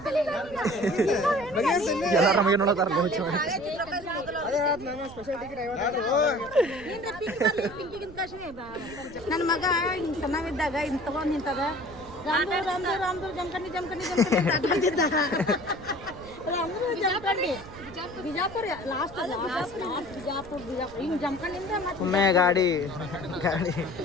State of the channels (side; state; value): right; noise; rumble, 18 dB below the sound